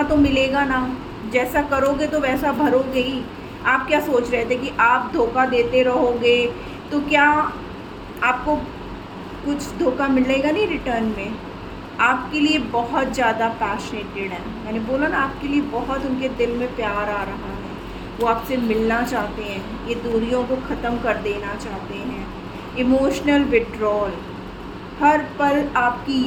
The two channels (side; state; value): both; identical; correlation 1.00